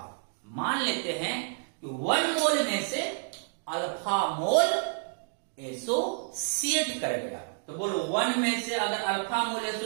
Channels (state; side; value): silent; left; 58 dB below the other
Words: मान लेते हैं कि 1 मोल में से अल्फा मोल एसोसिएट कर गया, तो बोलो 1 में से अगर अल्फा मोल